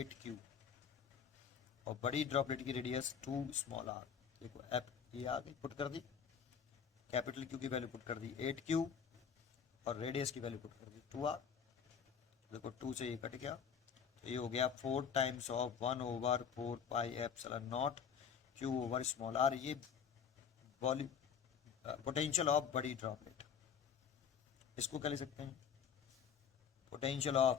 और बड़ी ड्रॉपलेट की रेडियस 2 स्मॉल आर। देखो एप ये आ गई, पुट कर दी, कैपिटल क्यू की वैल्यू पुट कर दी 8q, और रेडियस की वैल्यू पुट कर दी 2r। देखो 2 से ये कट गया, तो ये हो गया 4 times of 1/4 pi epsilon nought q over small R. ये वॉल्यूम पोटेंशियल ऑफ बड़ी ड्रॉपलेट। इसको क्या लिख सकते हैं? Potential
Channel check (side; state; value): right; quieter; 7.3 dB